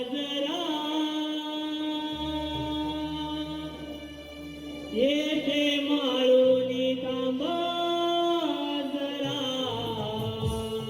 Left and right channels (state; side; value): identical; both; correlation 1.00